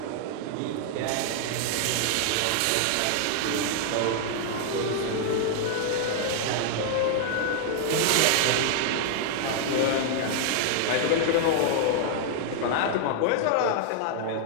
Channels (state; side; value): different; both; correlation -0.01